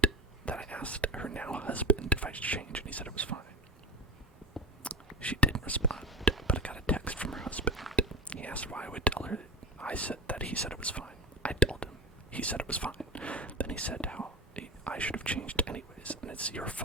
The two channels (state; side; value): normal; both; correlation 0.26